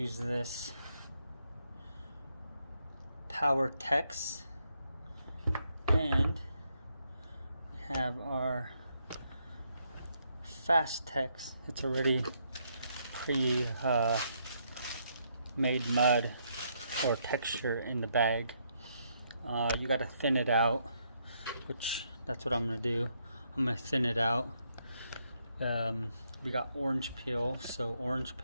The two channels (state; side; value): inverted; both; correlation -0.75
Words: this Power Tex, and we have our Fast Tex. It's already pre made mud or texture in the bag. You gotta thin it out, which that's what I'm gonna do. I'm gonna thin it out. We got orange peel, so orange